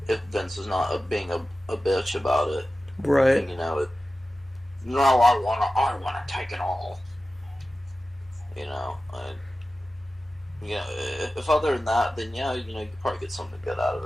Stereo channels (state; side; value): normal; both; correlation 0.94